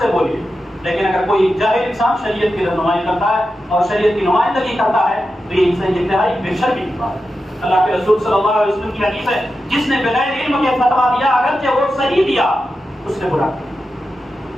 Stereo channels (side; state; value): both; normal; correlation 0.90